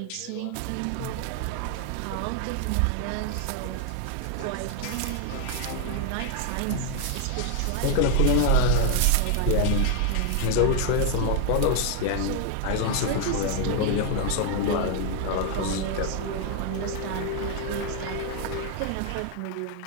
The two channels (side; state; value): both; different; correlation 0.00